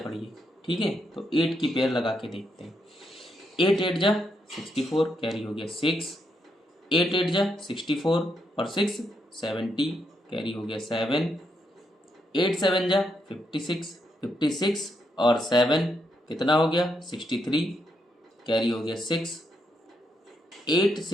ठीक है, तो 8 की पेयर लगा के देखते हैं। 8 8 जा 64 कैरी हो गया 6, 8 8 जा 64 और 6 70 कैरी हो गया 7, 8 7 जा 56 56 और 7 कितना हो गया 63 कैरी हो गया 6, 8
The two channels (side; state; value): both; normal; correlation 0.79